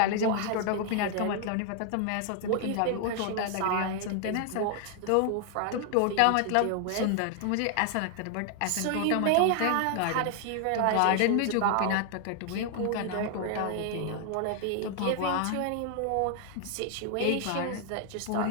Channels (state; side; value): different; both; correlation 0.00